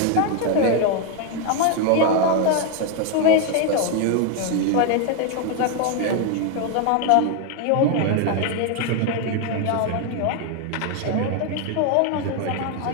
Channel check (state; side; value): different; both; correlation 0.01